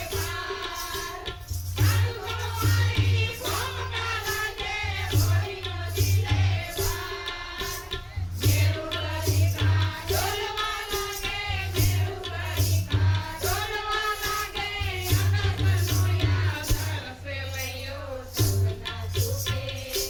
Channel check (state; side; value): identical; both; correlation 1.00